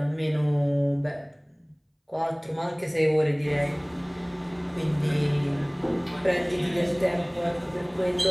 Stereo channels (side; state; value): both; identical; correlation 1.00